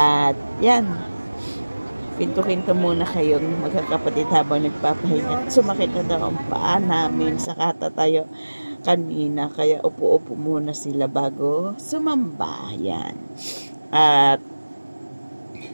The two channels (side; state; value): both; inverted; correlation -1.00